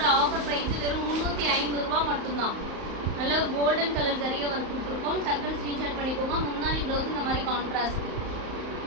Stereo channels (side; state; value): left; late; 35 ms